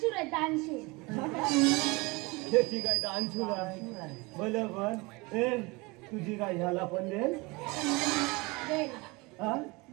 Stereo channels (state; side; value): quieter; left; 25.2 dB